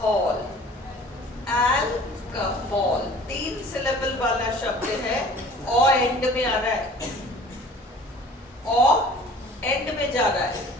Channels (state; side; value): normal; both; correlation 0.47